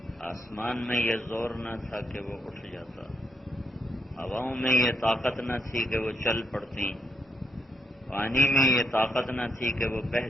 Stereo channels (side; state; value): both; normal; correlation 0.77